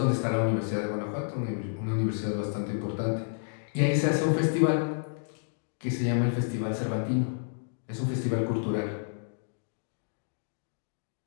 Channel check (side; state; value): right; silent; digital silence